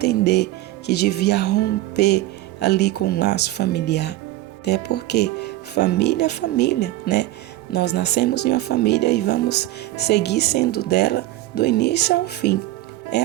que devia romper ali com o laço familiar. Até porque família é família, né? Nós nascemos em uma família e vamos seguir sendo dela do início ao fim. É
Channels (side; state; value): left; quieter; 16.0 dB